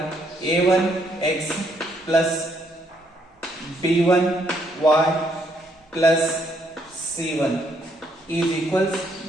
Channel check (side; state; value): both; normal; correlation 0.72